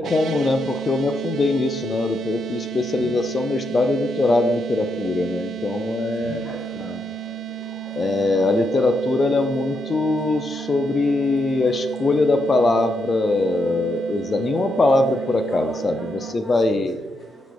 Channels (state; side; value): normal; both; correlation 0.81